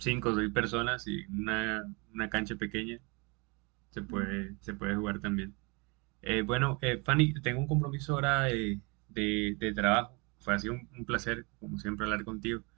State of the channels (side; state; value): left; quieter; 29.3 dB